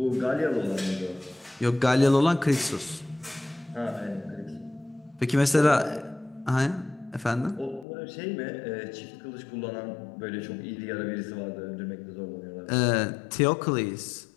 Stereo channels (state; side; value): drops out; right; at 7.9 s